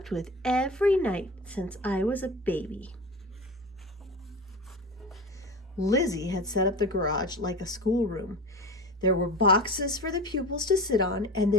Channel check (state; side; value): normal; both; correlation 0.31